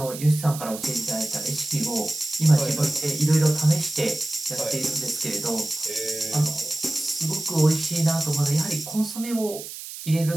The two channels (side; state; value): right; noise; hiss, 11 dB below the sound